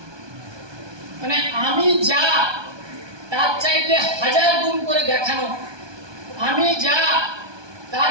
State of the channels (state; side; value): late; left; 1.2 ms